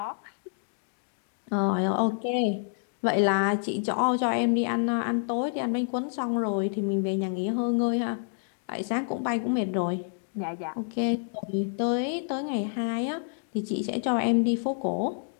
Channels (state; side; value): silent; right; digital silence